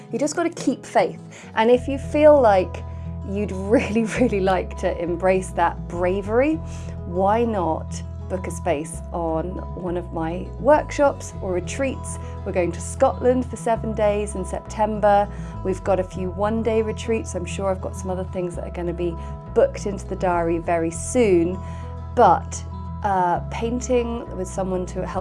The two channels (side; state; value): both; identical; correlation 1.00